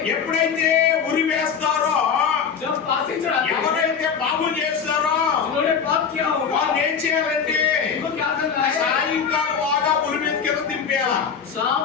ఎప్పుడైతే ఉరి వేస్తారో जब फांसी चढ़ाते हैं, ఎవరైతే పాపం చేస్తారో जिन्होंने पाप किया होगा వాళ్ళు ఏం చేయాలంటే उनको क्या करना है? సాయంకాలం బాగా ఉరి మీద కింద దింపేయాలి शाम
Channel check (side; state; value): right; quieter; 6.7 dB